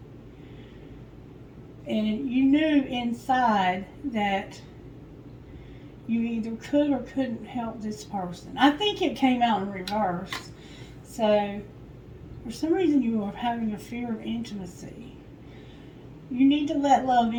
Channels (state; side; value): identical; both; correlation 1.00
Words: And you knew inside that you either could or couldn't help this person. I think it came out in reverse. So, for some reason you are having a fear of intimacy. You need to let love